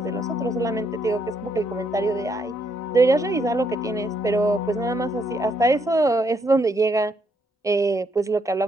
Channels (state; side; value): normal; both; correlation 0.74